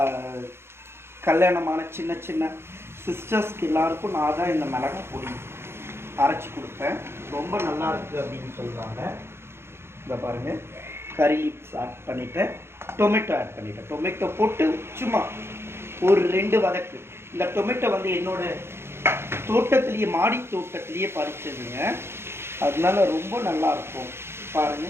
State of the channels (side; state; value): left; late; 0.12 ms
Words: கல்யாணமான சின்ன சின்ன சிஸ்டர்ஸ்க்கு எல்லாருக்கும் நான் தான் இந்த மிளகாய் பொடி அரைச்சி கொடுப்பேன். ரொம்ப நல்லா இருக்குது அப்படின்னு சொல்கிறாங்க. இதை பாருங்கள், கறி லீவ்ஸ் ஆட் பண்ணிவிட்டேன், டொமேட்டோ ஆட் பண்ணிவிட்டேன். டொமேட்டோ போட்டு சும்மா ஒரு 2 வதக்கு. இந்த டொமேட்டோ வந்து என்னோட தோட்டத்திலேயே, மாடி தோட்டத்திலேயே பறிச்சதுங்க, அதனால ரொம்ப நல்லா இருக்கும்.